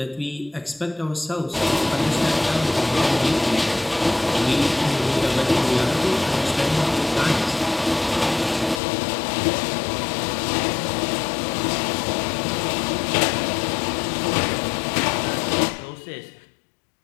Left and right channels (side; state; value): right; drops out; at 8.8 s